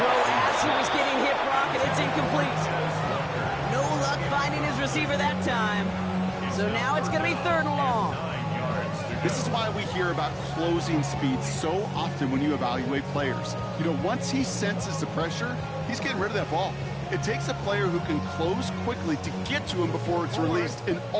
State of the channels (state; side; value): identical; both; correlation 1.00